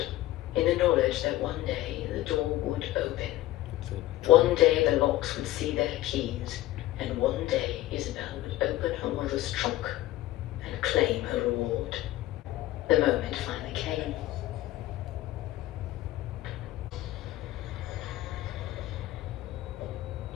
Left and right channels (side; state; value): right; quieter; 15.8 dB